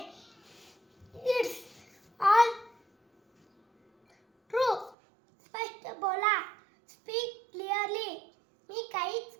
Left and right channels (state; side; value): drops out; left; at 5.0 s